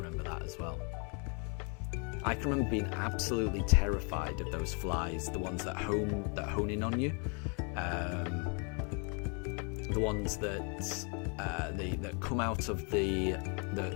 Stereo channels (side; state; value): right; quieter; 36.4 dB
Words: that as well. I can remember being absolutely terrified of those flies, the ones that hone in on you, the ones that come out of the